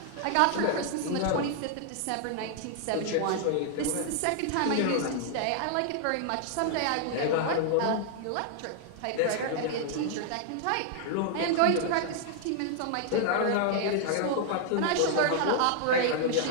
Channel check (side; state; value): both; different; correlation -0.01